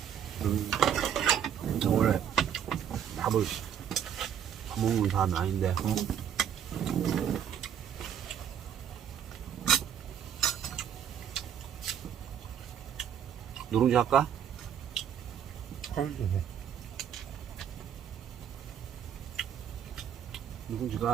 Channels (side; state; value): left; quieter; 9.1 dB